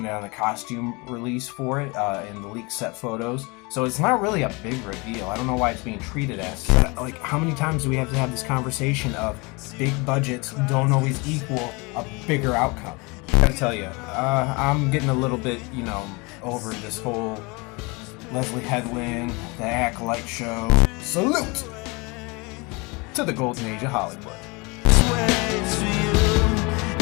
it on the costume release for it in the leaked set photos. So it's not really a big reveal. I don't know why it's being treated as. How many times do we have to have this conversation of big budgets don't always equal a bigger outcome? I gotta tell you, I'm getting a little bit, over this whole Leslye Headland, the Acolyte show. Salute to the golden age of Hollywood.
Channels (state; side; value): quieter; right; 27.5 dB